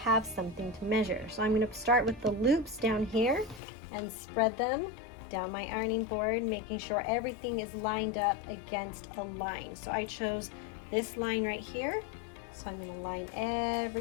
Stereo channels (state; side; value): drops out; right; at 3.6 s